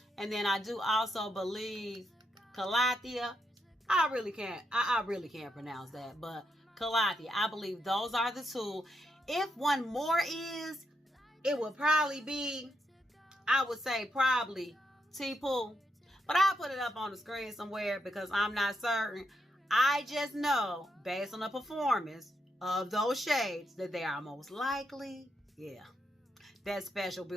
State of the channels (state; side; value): normal; both; correlation 0.81